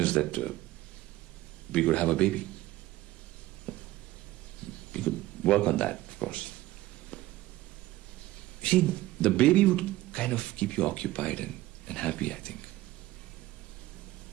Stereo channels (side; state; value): left; quieter; 16.8 dB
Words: that we could have a baby. We could work on that, of course. See, the baby would kind of keep you occupied and happy, I think.